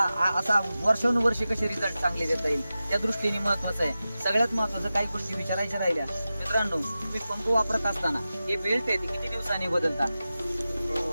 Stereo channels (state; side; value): inverted; both; correlation -0.94